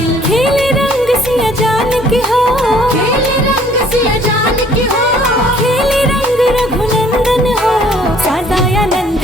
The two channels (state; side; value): normal; both; correlation 0.59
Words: खेले रंग सिया जान के हो, खेले रंग सिया जान की हो। खेले रंग रघुनंदन हो। सदानंद